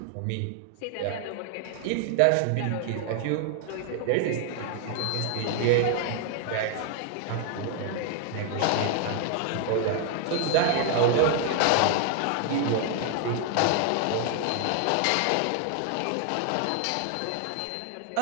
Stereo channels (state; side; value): different; both; correlation 0.00